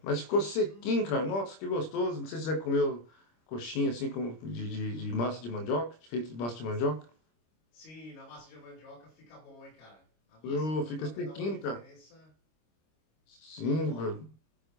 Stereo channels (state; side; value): late; right; 26 ms